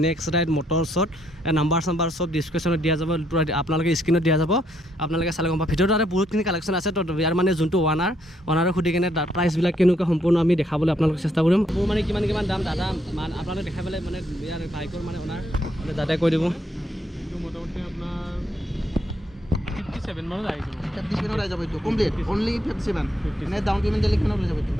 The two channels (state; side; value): normal; both; correlation 0.73